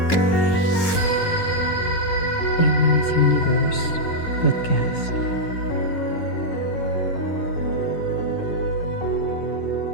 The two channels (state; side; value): late; right; 11 ms